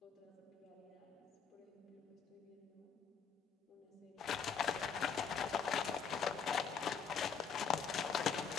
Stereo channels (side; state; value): right; quieter; 6.5 dB